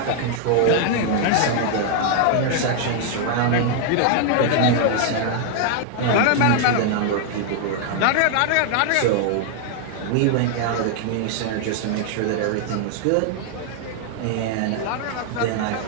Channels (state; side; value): different; both; correlation 0.00